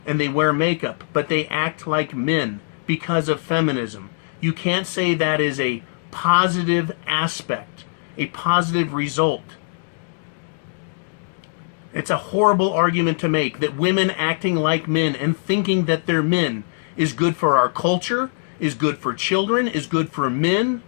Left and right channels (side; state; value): right; silent; digital silence